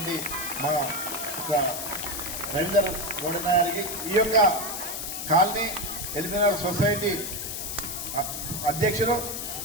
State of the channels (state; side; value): noise; left; hiss, 5 dB below the sound